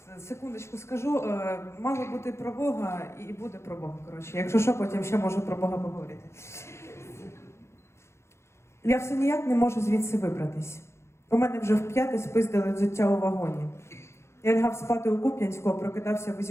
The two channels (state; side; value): late; right; 0.13 ms